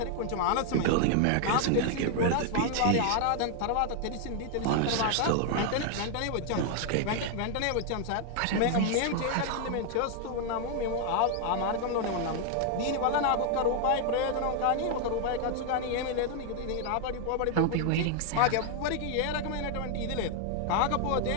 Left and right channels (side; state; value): both; different; correlation 0.00